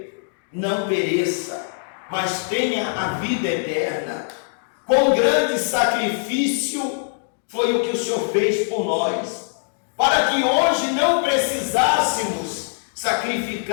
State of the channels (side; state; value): right; silent; digital silence